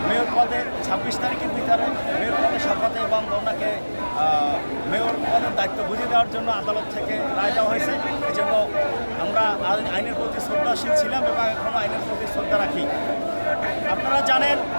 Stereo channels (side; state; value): both; inverted; correlation -1.00